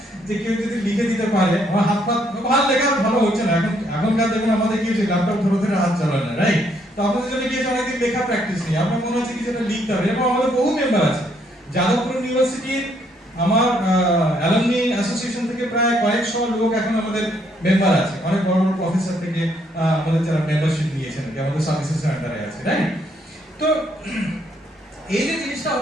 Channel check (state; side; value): normal; both; correlation 0.71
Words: যে কেউ যদি লিখে দিতে পারে, আমার হাত পা ভালো লেখা ভালো হচ্ছে না, এখনকার দেখুন আমাদের কি হচ্ছে, ল্যাপটপ ধরে ধরে হাত চালায় না, রাইট? তো আপনাদের জন্য কি হচ্ছে, অনেকদিন লেখা প্র্যাকটিস নেই, আপনার মনে হচ্ছে কি যেটা লিখতে হবে। এবং আমাদের বহু মেম্বার আছে, যাদবপুর ইউনিভার্সিটির আমার অ্যালামনি অ্যাসোসিয়েশন থেকে প্রায় কয়েকশো লোক এখন আমাদের মেম্বার আছে, অনেক বড় বড় প্রফেসর থেকে আমাদের যারা মেম্বারশিপ নিয়েছেন, আমাদের সার্ভিসেস আন্ডারে আছে, রাইট? তো এই যে জিনিসটা